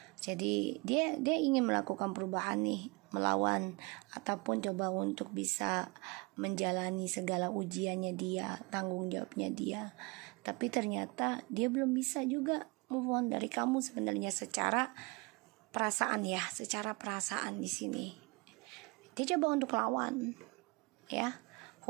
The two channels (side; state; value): left; quieter; 27.6 dB